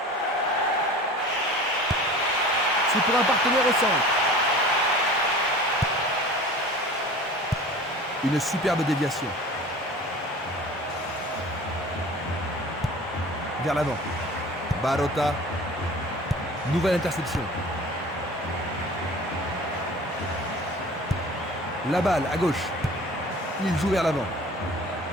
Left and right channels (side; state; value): both; normal; correlation 0.41